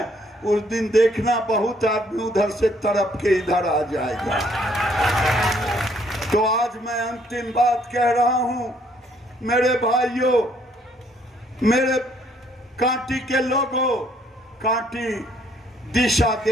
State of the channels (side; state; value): both; normal; correlation 0.66